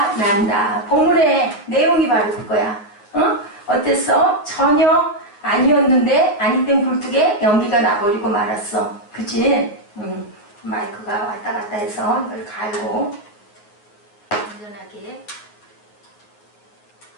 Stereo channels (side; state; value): right; late; 9.6 ms